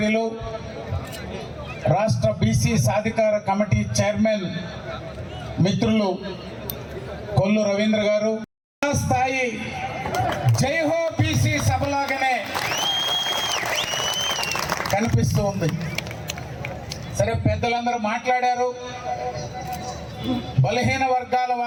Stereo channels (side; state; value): both; identical; correlation 1.00